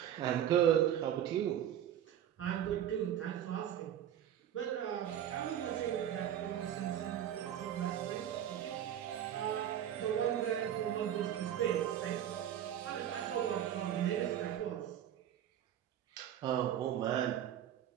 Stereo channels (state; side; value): quieter; left; 10.5 dB